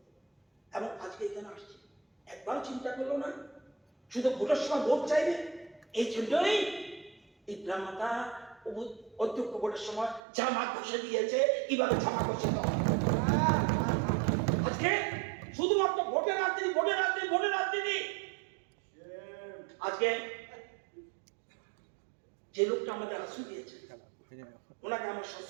এবং আজকে এখানে আসছে, একবারও চিন্তা করলো না শুধু ভোটের সময় ভোট চাইবে। এই জন্যই টিপ্রা মাতা অধ্যক্ষ ভোটের সময় জামা ঘষে দিয়েছে, কিভাবে জামা ঘষে দেওয়া। আজকে শুধুমাত্র ভোটের রাজনীতি, ভোটের রাজনীতি, ভোটের রাজনীতি। আজকে যে লোকটা আমাদের আশ্রয় দিয়েছে ওনাকে আমার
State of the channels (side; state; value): left; drops out; at 10.2 s